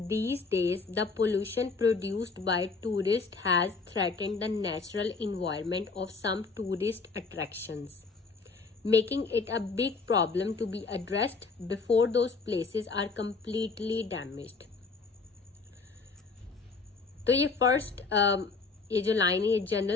days, the pollution produced by tourists has threatened the natural environment of some tourist attractions, making it a big problem to be addressed before those places are completely damaged. तो ये first ये जो line है ये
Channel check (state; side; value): quieter; right; 4.4 dB